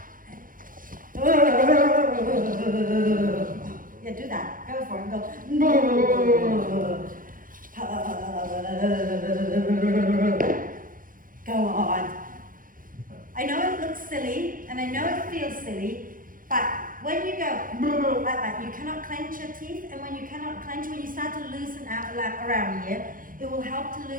Yeah, do that. Go for it. Go. Go on. I know it looks silly, and I know it feels silly, but when you go like that, you cannot clench your teeth, and when you cannot clench, when you start to loosen out around here, it will help to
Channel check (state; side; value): late; left; 0.40 ms